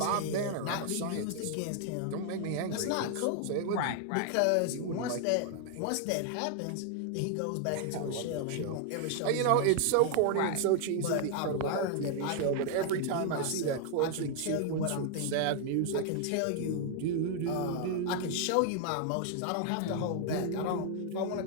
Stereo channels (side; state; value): both; different; correlation 0.00